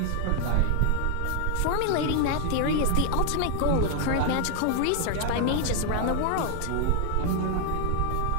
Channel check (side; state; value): both; different; correlation 0.00